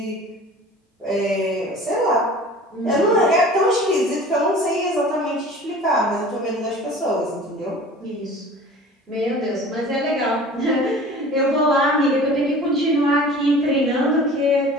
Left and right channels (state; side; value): normal; both; correlation 0.43